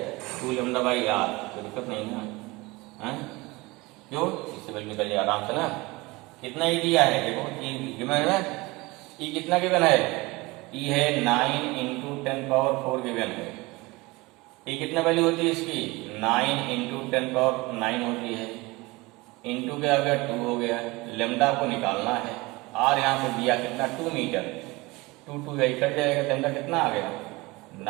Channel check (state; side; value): quieter; left; 22.9 dB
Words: 2 लेमडा बाई आर, कोई दिक्कत नहीं ना है? क्यों? इससे वैल्यू निकल जाए आराम से ना। कितना ई दिया है देखो, ई गिवन है ना, ई कितना गिवन है? ई है 9 × 10⁴ गिवन है। ई कितना वैल्यू होती है इसकी? 9 × 10⁹ होती है, इंटू क्या हो गया 2 हो गया। लेमडा को निकालना है, आर यहाँ पे दिया कितना 2 मीटर, 2 कट जाएगा, लेमडा कितना आ गया